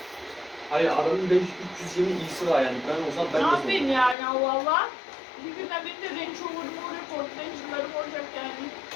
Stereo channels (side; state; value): right; drops out; at 4.2 s